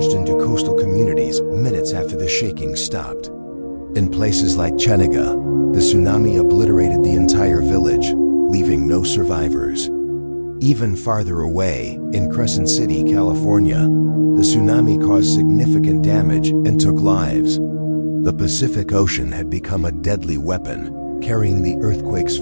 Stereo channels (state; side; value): inverted; both; correlation -1.00